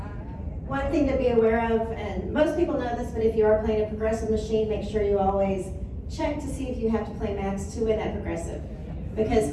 One thing to be aware of, and most people know this, but if you are playing a progressive machine, make sure you always check to see if you have to play max to win that progressive. because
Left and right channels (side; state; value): both; identical; correlation 1.00